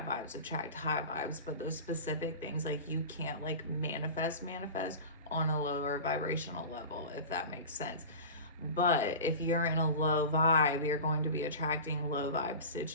vibes attract high vibes, but those specific things, like you can't like manifest on a lower vibrational level, if that makes sense. But if you're in a low vibe, you're going to be attracting low vibe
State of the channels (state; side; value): inverted; both; correlation -0.32